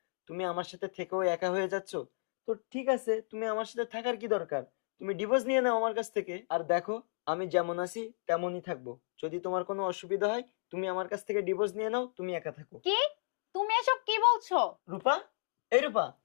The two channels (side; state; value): right; silent; digital silence